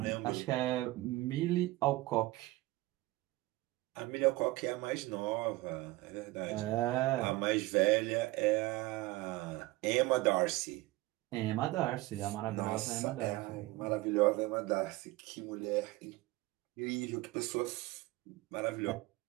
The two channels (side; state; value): left; quieter; 19.7 dB